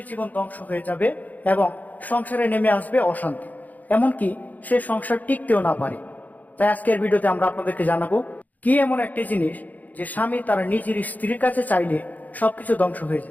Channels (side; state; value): right; late; 0.080 ms